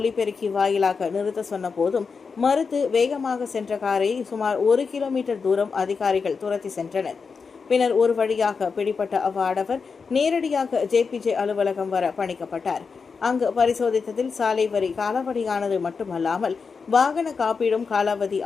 வாயிலாக நிறுத்த சொன்ன போதும் மறுத்து வேகமாக சென்ற காரை சுமார் 1 கிலோமீட்டர் தூரம் அதிகாரிகள் துரத்தி சென்றனர். பின்னர் ஒரு வழியாக பிடிபட்ட அவ்வாடவர் நேரடியாக JPJ அலுவலகம் வர பணிக்கப்பட்டார். அங்கு பரிசோதித்ததில் சாலை வரி காலாவதியானது மட்டுமல்லாமல் வாகன காப்பீடும் காலாவதி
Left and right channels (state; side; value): quieter; right; 5.2 dB